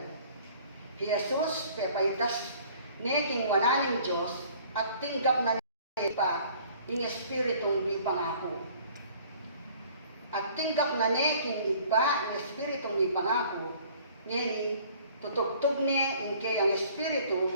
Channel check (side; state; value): both; inverted; correlation -0.53